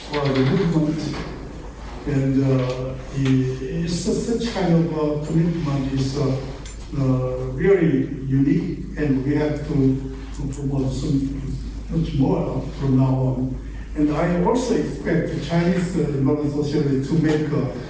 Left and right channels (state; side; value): identical; both; correlation 1.00